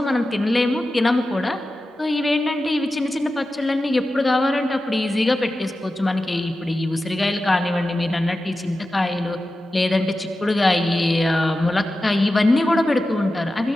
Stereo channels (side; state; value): both; normal; correlation 0.93